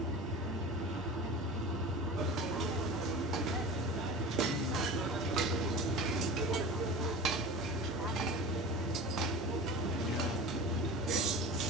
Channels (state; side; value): normal; both; correlation 0.34